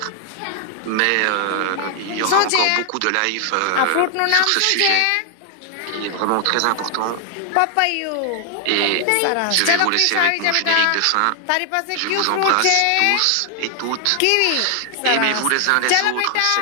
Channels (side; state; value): both; different; correlation 0.00